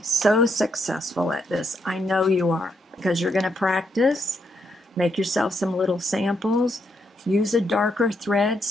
so successful at this. I know you are, because you're going to practice. Make yourself some little samples. Use a darker thread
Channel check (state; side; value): normal; both; correlation 0.78